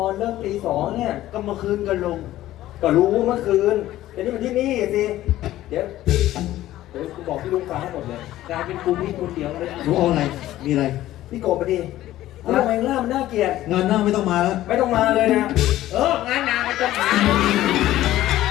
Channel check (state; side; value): quieter; right; 14.5 dB